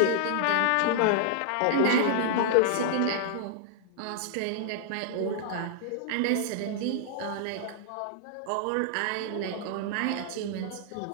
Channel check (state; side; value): different; both; correlation -0.01